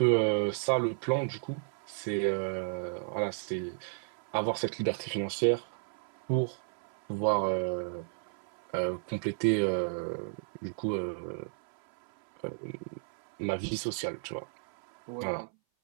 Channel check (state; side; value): silent; left; 56 dB below the other